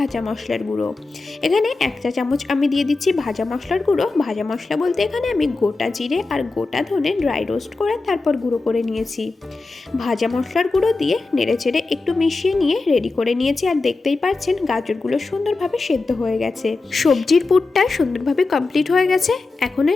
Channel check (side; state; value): right; quieter; 3.6 dB